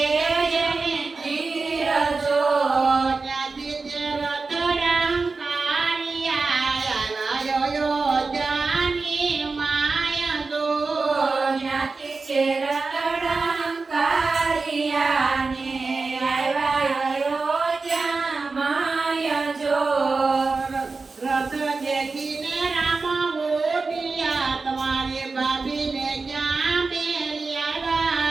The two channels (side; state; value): left; quieter; 4.1 dB